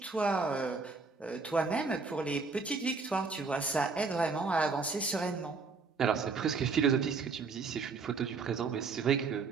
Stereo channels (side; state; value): left; quieter; 4.5 dB